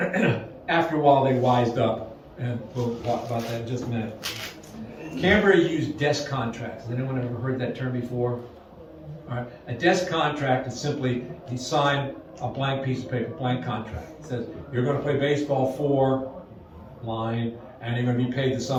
After a while, they wised up. And we'll talk about that in just a minute. Cambria used desk contracts. Has anyone ever heard that term before? All right. A desk contract is simply you sign a blank piece of paper, blank contract. It says you're going to play baseball for line, and you're going to be paid the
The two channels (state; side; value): identical; both; correlation 1.00